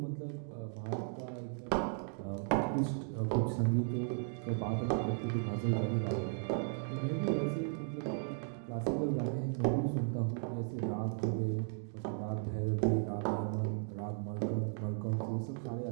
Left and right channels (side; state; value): left; silent; 54 dB below the other